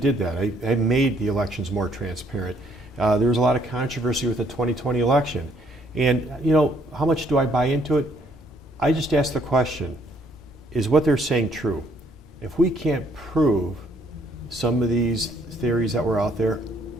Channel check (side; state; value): both; normal; correlation 0.67